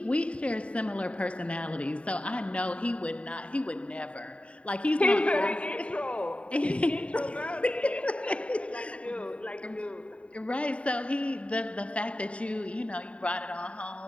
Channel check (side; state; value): right; late; 0.063 ms